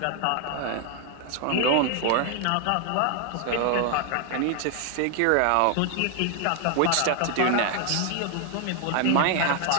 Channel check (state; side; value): different; both; correlation 0.00